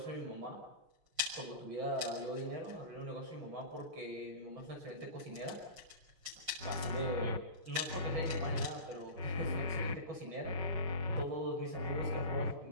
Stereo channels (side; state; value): left; late; 5.6 ms